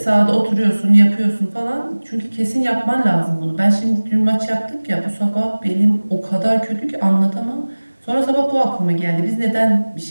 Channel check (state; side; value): inverted; both; correlation -1.00